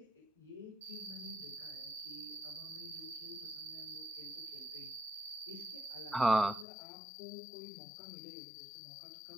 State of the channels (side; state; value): right; drops out; at 6.7 s